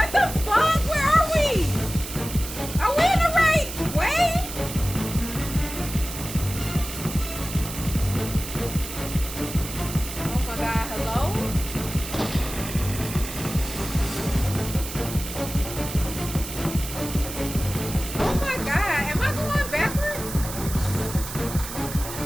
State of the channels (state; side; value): noise; right; hiss, 9 dB below the sound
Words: the fuck? Where are we? Are we in the right way? Oh my god, hello? Oh my god, am I going backwards?